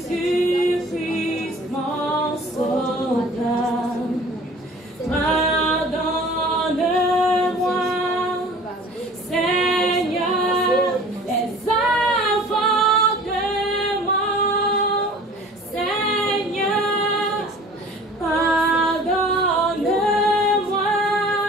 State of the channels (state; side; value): normal; both; correlation 0.46